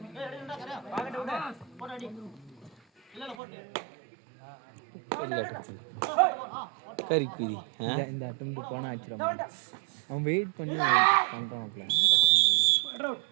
கறிக்குதி இந்த அட்டம்ப்ட் போனால் ஆச்சிடும் அவன் வெயிட் பண்ணி பண்ணுறான்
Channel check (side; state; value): left; drops out; at 3.4 s